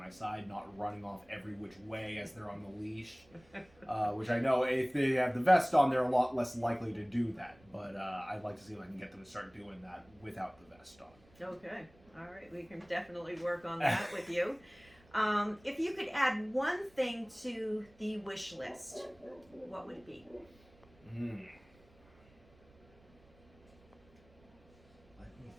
side, not running off every which way as they're on the leash, which I know if they have the vest on, they're a lot less likely to do that, but I'd like to see if I can get them to start doing that without the vest on. Okay. All right. We can definitely work on that with you. If you could add one thing to the wish list, what would it be? Let me think.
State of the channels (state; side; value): noise; right; rumble, 28 dB below the sound